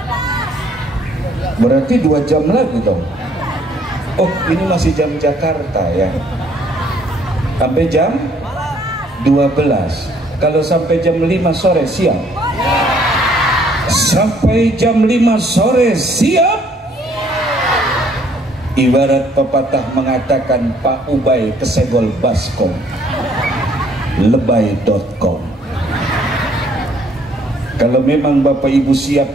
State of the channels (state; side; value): normal; both; correlation 0.63